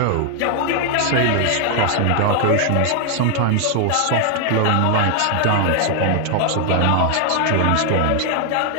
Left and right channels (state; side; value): different; both; correlation 0.00